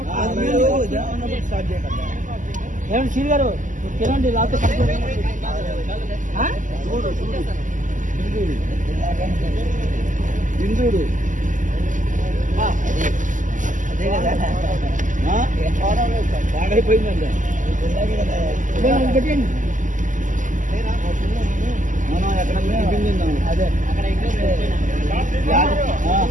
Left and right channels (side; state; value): left; late; 0.37 ms